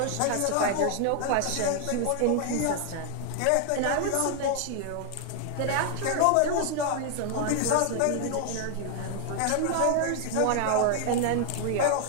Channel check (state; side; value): different; both; correlation 0.00